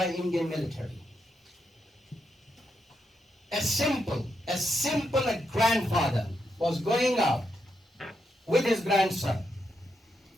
Indian military. A simple grandfather was going out with his grandson.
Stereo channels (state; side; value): normal; both; correlation 0.82